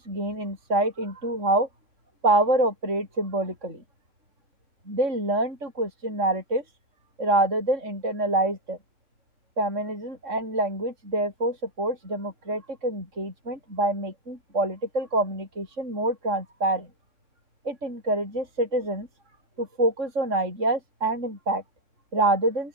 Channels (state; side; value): late; left; 3.6 ms